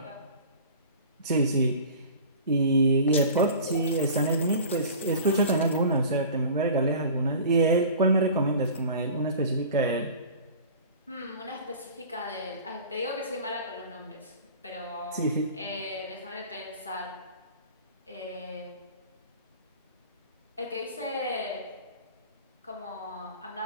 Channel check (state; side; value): inverted; both; correlation -0.40